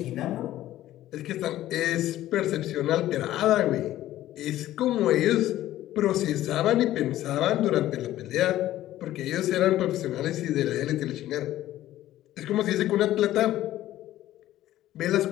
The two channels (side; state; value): right; quieter; 14.1 dB